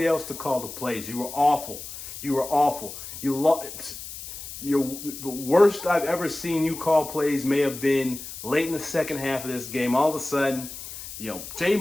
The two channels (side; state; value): left; noise; hiss, 11 dB below the sound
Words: else to call the plays. You were awful. The worst I've ever seen you call plays may have been late in the second half of this game. All of a sudden,